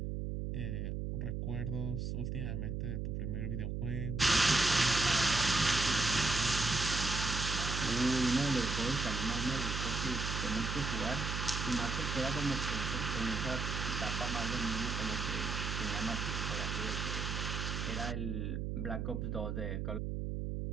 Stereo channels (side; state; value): right; noise; hum, 2 dB below the sound